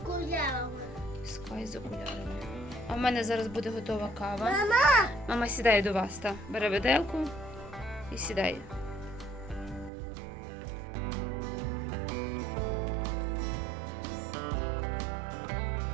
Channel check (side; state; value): left; drops out; at 9.9 s